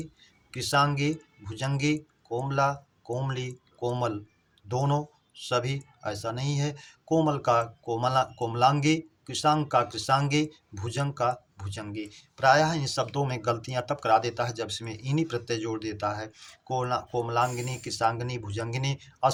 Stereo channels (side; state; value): both; identical; correlation 1.00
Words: कृशांगी, भुजंगी, कोमला, कोमली, कोमल, दोनों, सभी ऐसा नहीं है। कोमल का कोमलांगी, कृशांग का कृशांगी, भुजंग का भुजंगी। प्रायः इन शब्दों में गलतियां तब करा देता है जब इसमें इन्हीं प्रत्यय जोड़ देता है। कोमलांगिनी, कृशांगिनी, भुजंगिनी